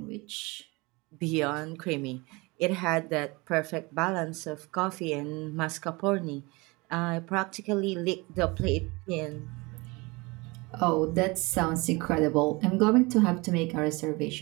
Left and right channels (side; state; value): left; quieter; 25.2 dB